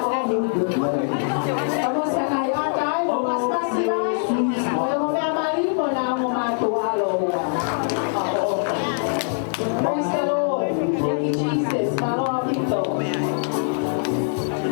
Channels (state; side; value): silent; right; 64 dB below the other